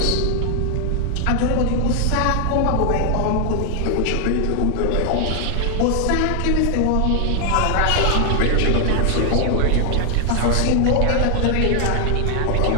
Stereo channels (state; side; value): different; both; correlation 0.00